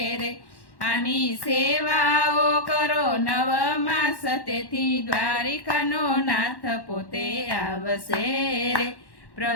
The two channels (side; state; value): right; late; 1.1 ms